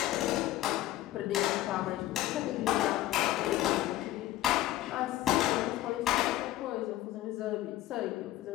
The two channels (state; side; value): quieter; right; 15.2 dB